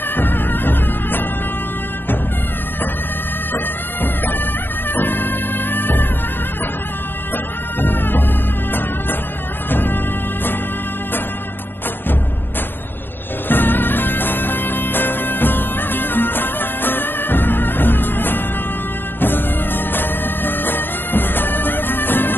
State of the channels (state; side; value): late; right; 0.098 ms